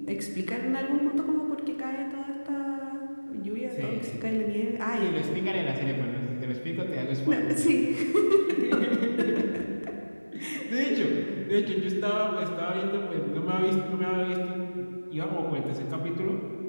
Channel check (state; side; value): inverted; both; correlation -1.00